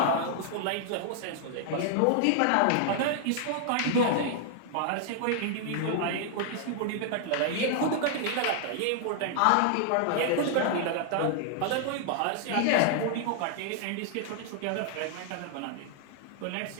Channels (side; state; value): both; different; correlation -0.01